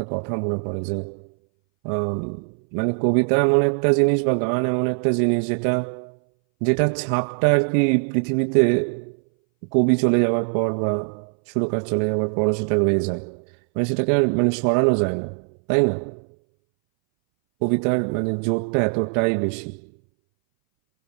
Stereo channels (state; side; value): silent; left; 62 dB below the other